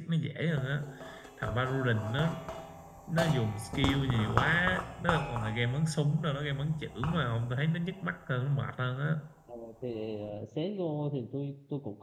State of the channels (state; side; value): identical; both; correlation 1.00